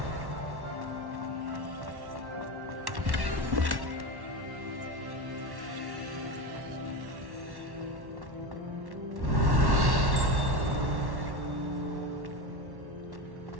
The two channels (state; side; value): late; left; 1.1 ms